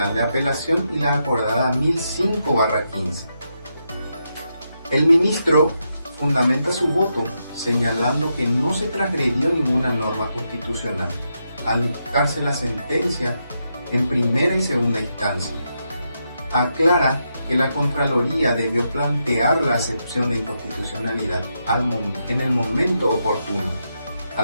de Apelación y la acordada 1005/15. El ministro fundamenta su voto señalando que no se transgredió ninguna norma constitucional al dictarse la sentencia en primera y segunda instancia. Aclara que la Contraloría debió plantear la acepción de inconstitucionalidad en el momento oportuno,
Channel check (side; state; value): both; inverted; correlation -0.83